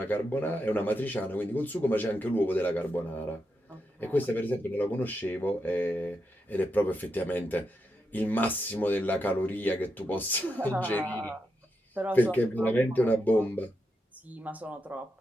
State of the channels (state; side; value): normal; both; correlation 0.85